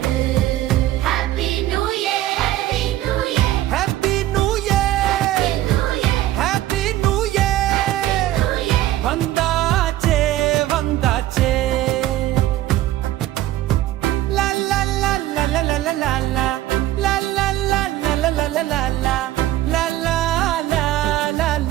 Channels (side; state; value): left; quieter; 14.6 dB